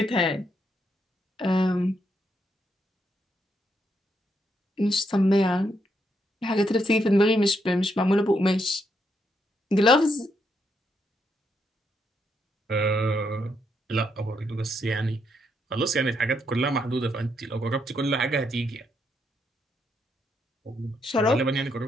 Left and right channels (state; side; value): normal; both; correlation 0.78